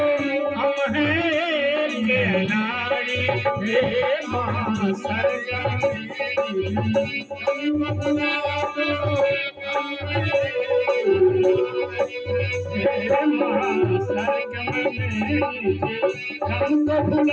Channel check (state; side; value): identical; both; correlation 1.00